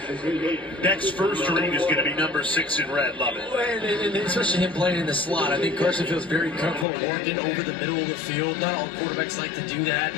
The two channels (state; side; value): drops out; right; at 6.9 s